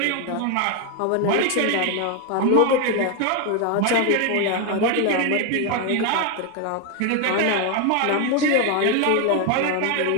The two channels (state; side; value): different; both; correlation 0.01